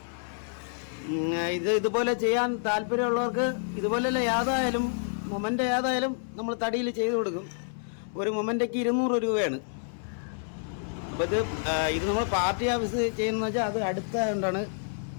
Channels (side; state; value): right; silent; 59 dB below the other